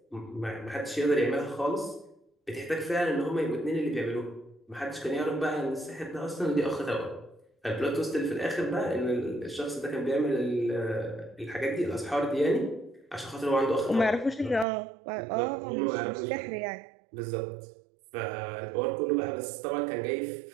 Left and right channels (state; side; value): drops out; left; at 14.7 s